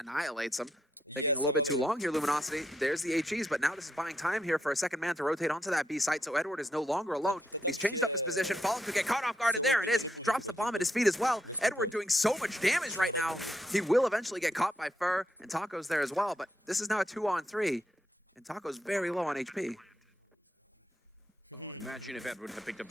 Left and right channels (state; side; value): normal; both; correlation 0.79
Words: him. Taking a little bit too long here, Luminosity. There's the HEs, but now this is buying time here for a second man to rotate onto that B site, so Edward is no longer alone, and he's changed up his position. Fallen could get caught off guard, and there it is. Drops the bomb at his feet as well. Edward doing so much damage right now. He will eventually get caught by Fur, and Taco's there as well, but this is now a 2-on-3, and Taco's very low on HP. Oh, imagine if Edward had picked up